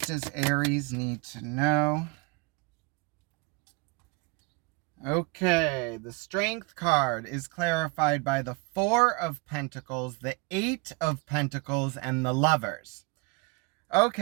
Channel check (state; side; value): quieter; left; 28.0 dB